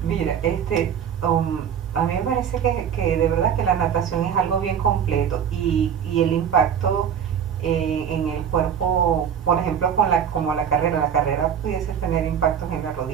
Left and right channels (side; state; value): left; quieter; 8.2 dB